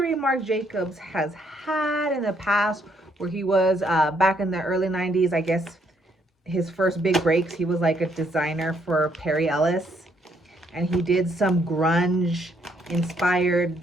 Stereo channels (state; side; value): normal; both; correlation 0.70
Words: Marc Jacobs has had in the past, where he was back in the early 90s, I guess his first big breaks, he was like a designer for Perry Ellis, and he did some grunge inspired